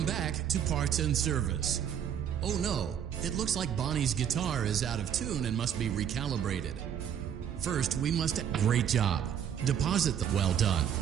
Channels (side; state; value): left; quieter; 8.9 dB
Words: back to Parts and Service. Oh no, it looks like Bonnie's guitar is out of tune and must be recalibrated. First, we must... Great job. Deposit the... Well done.